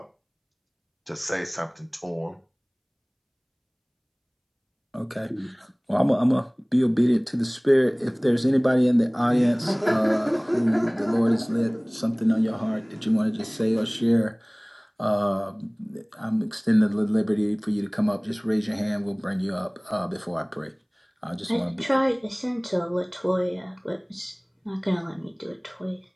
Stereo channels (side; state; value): both; identical; correlation 1.00